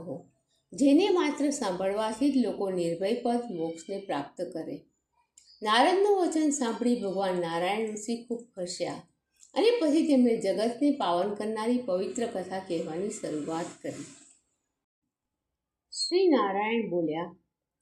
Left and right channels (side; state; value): both; identical; correlation 1.00